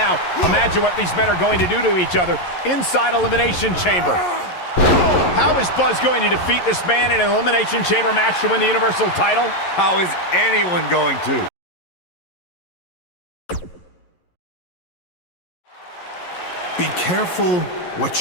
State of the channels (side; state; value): right; late; 11 ms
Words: imagine what these men are going to do to each other inside Elimination Chamber. How is Buzz going to defeat this man in an Elimination Chamber match to win the Universal title? How is anyone going to? Be careful